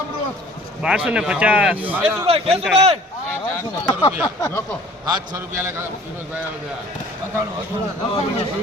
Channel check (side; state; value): both; normal; correlation 0.50